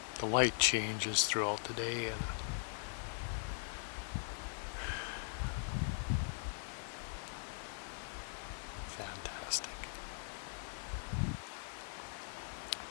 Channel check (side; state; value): right; silent; 50 dB below the other